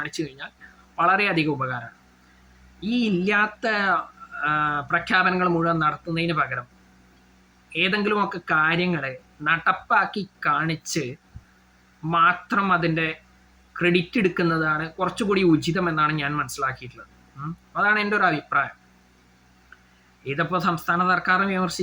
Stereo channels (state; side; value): identical; both; correlation 1.00